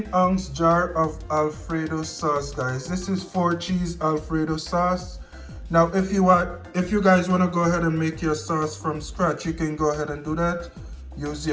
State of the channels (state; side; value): identical; both; correlation 1.00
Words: jar of Alfredo sauce, guys. This is 4-cheese Alfredo sauce. Now if you guys want to go ahead and make your sauce from scratch, you can go ahead and do that. Use